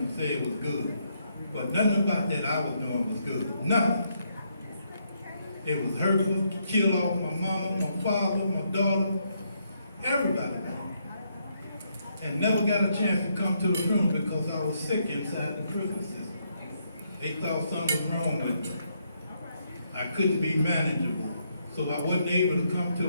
say it was good. But nothing about that I was doing was good. Nothing. It was hurtful, killed off my mama, my father, my daughter, everybody. And never got a chance to come to the funeral because I was sick inside the prison system. They thought something was wrong with me. I couldn't be manageable. So I wasn't able to come to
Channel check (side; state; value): both; inverted; correlation -0.76